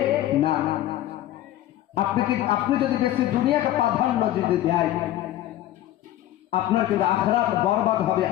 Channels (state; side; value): quieter; right; 13.8 dB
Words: না। আপনি যদি বেশি দুনিয়াকে প্রাধান্য যদি দেয়, আপনার কিন্তু আখিরাত বরবাদ হবে।